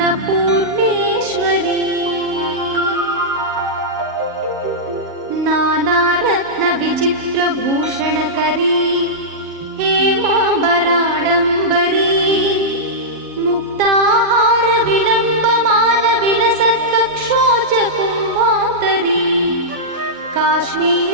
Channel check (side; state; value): left; late; 7.3 ms